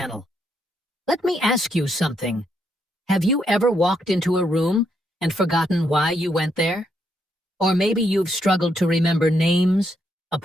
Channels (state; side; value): normal; both; correlation 0.77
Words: Let me ask you something. Have you ever walked into a room and forgotten why you went there? Or maybe you've struggled to remember names,